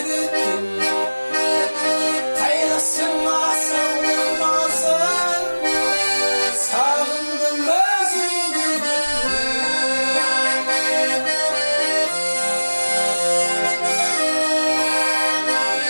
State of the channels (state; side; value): inverted; both; correlation -1.00